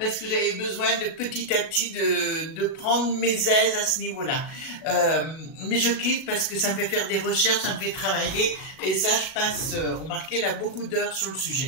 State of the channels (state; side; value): late; right; 37 ms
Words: que j'avais besoin de petit à petit de prendre mes aises à ce niveau-là. Mais je kiffe parce que ça me fait faire des recherches, ça me fait travailler, et ça je passe, remarquez là, beaucoup d'heures sur le sujet.